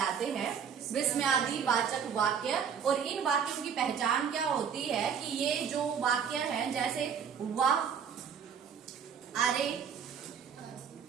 हैं? विस्मयादि वाचक वाक्य। और इन वाक्यों की पहचान क्या होती है कि ये जो वाक्य हैं, जैसे वाह, अरे,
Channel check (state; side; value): quieter; left; 7.3 dB